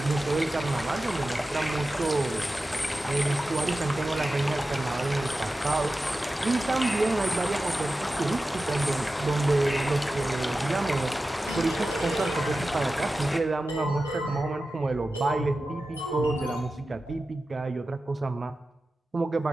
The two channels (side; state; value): both; normal; correlation 0.94